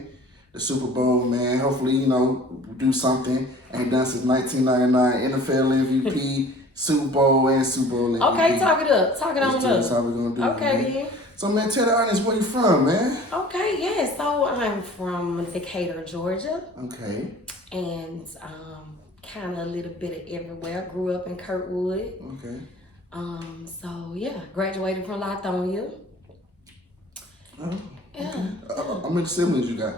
the Super Bowl, man. Hopefully, you know, do something. Ain't done since 1999. NFL MVP, Super Bowl, and Super Bowl MVP. Okay, talk it up. Talk it on up. That's how we're gonna do it. Okay, then. So, man, tell the audience where you from, man. Okay, yeah. So I'm from Decatur, Georgia. Okay. And kind of a little bit of everywhere. Grew up in Kirkwood. Okay. So yeah, graduated from Lithonia. Oh, yeah. Okay. How many siblings you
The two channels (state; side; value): normal; both; correlation 0.47